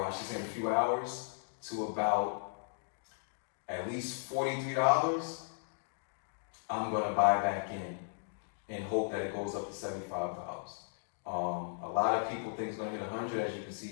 I should say in a few hours, to about at least $43, I'm going to buy back in and hope that it goes up to $75. A lot of people think it's going to hit 100, as you can see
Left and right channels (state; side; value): silent; right; digital silence